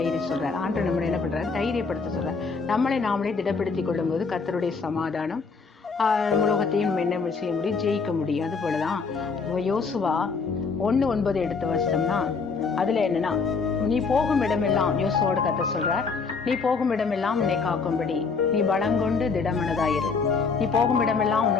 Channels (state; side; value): quieter; right; 4.9 dB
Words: சொல்றாரு. ஆண்டு நம்மளை என்ன பண்றாரு? தைரியப்படுத்த சொல்றாரு. நம்மளை நாமளே திடப்படுத்திக் கொள்ளும் போது கர்த்தருடைய சமாதானம் உலகத்தையும் என்ன செய்ய முடியும்? ஜெயிக்க முடியும். அது போலதான் யோசுவா 1:9 எடுத்து வச்சோம்னா அதுல என்னன்னா, நீ போகும் இடமெல்லாம் யோசுவோட கர்த்தர் சொல்றார், நீ போகும் இடமெல்லாம் உன்னை காக்கும்படி நீ பலங்கொண்டு திடமனதாயிரு, நீ போகும் இடமெல்லாம்